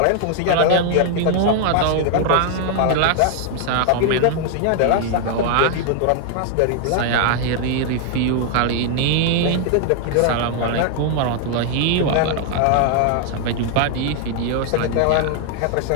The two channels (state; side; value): different; both; correlation 0.00